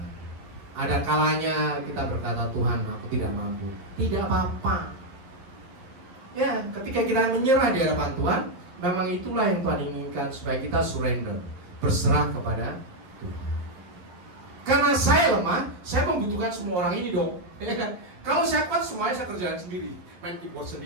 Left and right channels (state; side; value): late; left; 11 ms